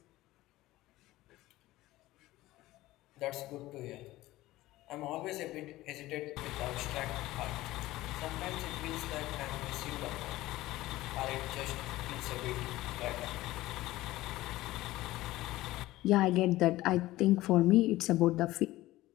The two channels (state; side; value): quieter; right; 17.2 dB